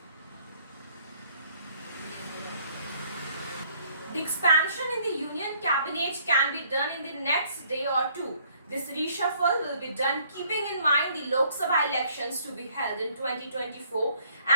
The expansion in the Union Cabinet can be done in the next day or two. This reshuffle will be done keeping in mind the Lok Sabha elections to be held in 2024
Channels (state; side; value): inverted; both; correlation -0.63